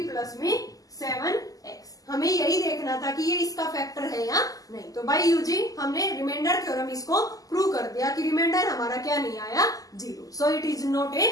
प्लस में 7x। हमें यही देखना था कि ये इसका फैक्टर है या नहीं। तो बाय यूजिंग हमने रिमाइंडर थ्योरम इसको प्रूव कर दिया कि रिमाइंडर हमारा क्या नहीं आया, 0। सो it is not A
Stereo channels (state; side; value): late; right; 0.17 ms